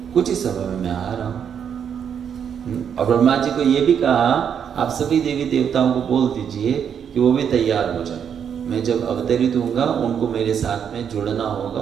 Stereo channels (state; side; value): quieter; left; 7.9 dB